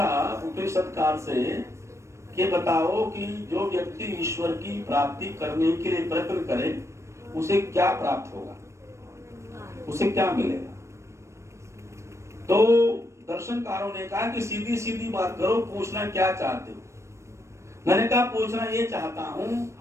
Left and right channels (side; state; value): left; late; 0.14 ms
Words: उपनिषदकार से कि बताओ कि जो व्यक्ति ईश्वर की प्राप्ति करने के लिए प्रयत्न करे, उसे क्या प्राप्त होगा? उसे क्या मिलेगा? तो दर्शनकारों ने कहा कि सीधी सीधी बात करो, पूछना क्या चाहते हो? मैंने कहा पूछना ये चाहता हूं,